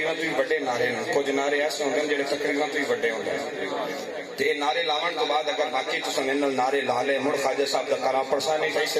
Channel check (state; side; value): identical; both; correlation 1.00